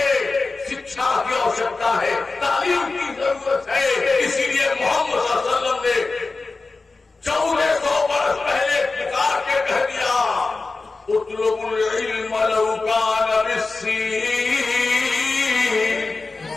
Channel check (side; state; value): right; quieter; 3.8 dB